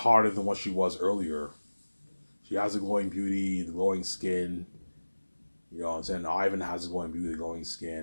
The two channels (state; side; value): inverted; both; correlation -1.00